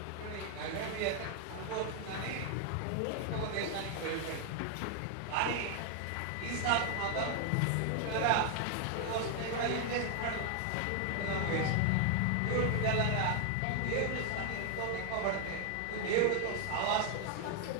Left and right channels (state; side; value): different; both; correlation 0.00